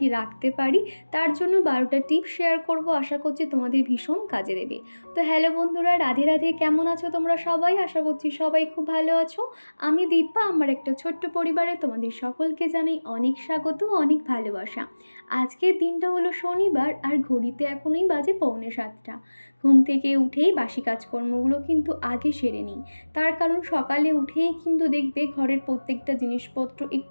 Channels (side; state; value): both; inverted; correlation -1.00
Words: রাখতে পারি। তার জন্য 12টা টিপস শেয়ার করব, আশা করছি তোমাদের ভীষণ কাজে দেবে। তো হ্যালো বন্ধুরা, রাধে রাধে। কেমন আছো তোমরা সবাই? আশা করছি সবাই খুব ভালো আছো। আমি দীপা, আমার একটা ছোট্ট পরিবারে তোমাদের সকলকে জানাই অনেক স্বাগত, অনেক ভালোবাসা। আজকের দিনটা হলো শনিবার, আর ঘড়িতে এখনই বাজে 6:45। ঘুম থেকে উঠেই বাসি কাজকর্মগুলো কিন্তু আগে সেরে নিই। তার কারণ সকালে উঠেই কিন্তু দেখবে ঘরের প্রত্যেকটা জিনিসপত্র